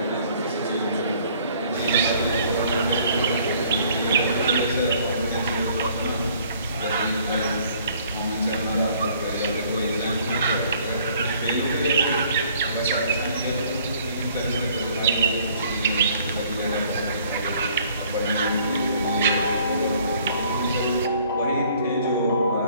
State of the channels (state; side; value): inverted; both; correlation -0.59